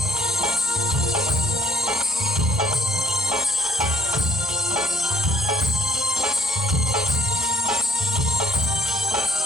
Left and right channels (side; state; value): both; normal; correlation 0.62